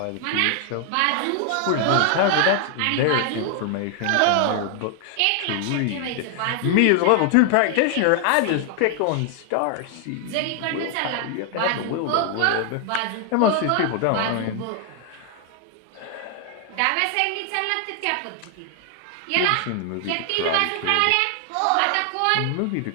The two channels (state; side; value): different; both; correlation 0.00